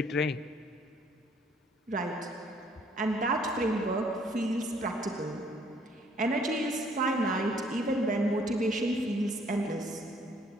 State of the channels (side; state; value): both; normal; correlation 0.62